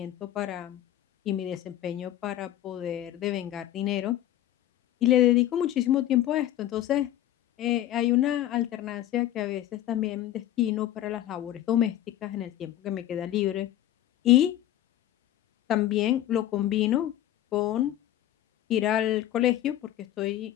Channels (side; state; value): right; quieter; 12.9 dB